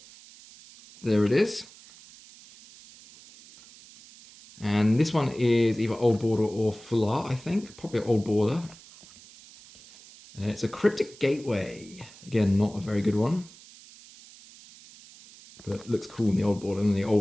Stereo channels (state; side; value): noise; right; hiss, 21 dB below the sound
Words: there it is. And this one is either Old Border or Full Art, I think. Probably Old Border. It's a Cryptic Gateway. Again, not a very good one. But looks cool in the Old Border and the